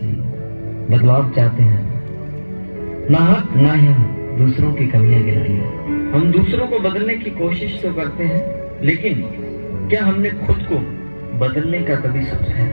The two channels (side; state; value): both; inverted; correlation -1.00